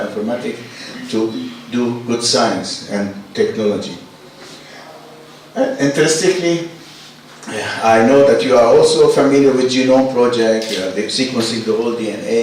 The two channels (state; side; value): identical; both; correlation 1.00